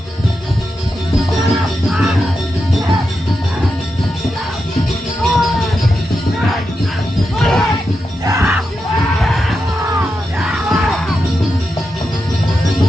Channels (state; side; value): normal; both; correlation 0.87